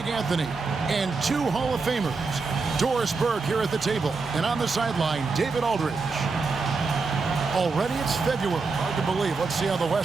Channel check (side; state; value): left; quieter; 4.3 dB